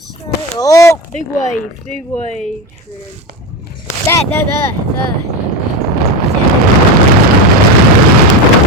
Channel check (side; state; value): both; normal; correlation 0.19